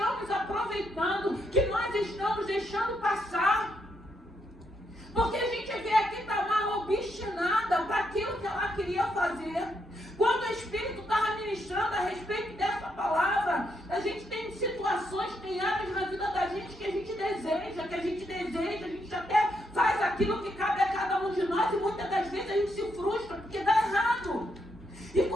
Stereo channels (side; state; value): both; normal; correlation 0.78